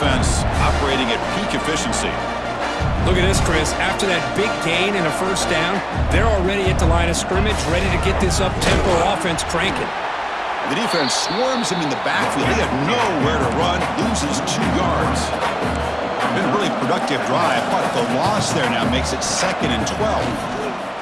operating at peak efficiency. Look at this, Chris. After that big gain and a first down, they're already at the line of scrimmage, ready to get this up-tempo offense cranking. The defense swarms him in the backfield. They have nowhere to run. Loses 2 yards. Been a really productive drive, but the loss there now makes it 2nd and 12.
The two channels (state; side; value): identical; both; correlation 1.00